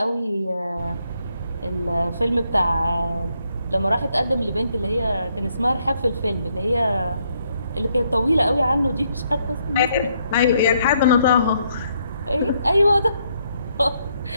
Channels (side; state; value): both; inverted; correlation -0.74